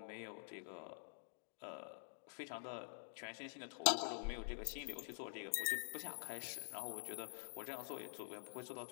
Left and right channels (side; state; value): right; silent; digital silence